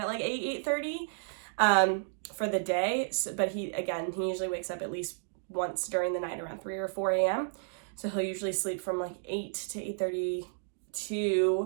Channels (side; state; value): left; silent; digital silence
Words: like 8:30 for the day. So, but he usually wakes up at least once during the night around 3 or 4 a.m. So he'll usually sleep from like 8 to 8:30